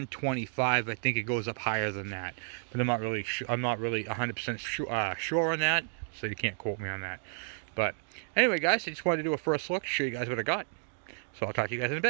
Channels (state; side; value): silent; left; 57 dB below the other